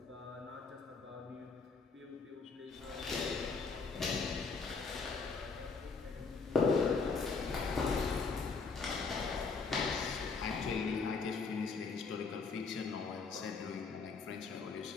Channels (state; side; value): quieter; right; 4.7 dB